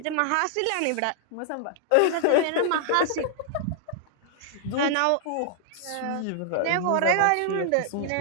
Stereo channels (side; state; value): both; different; correlation -0.01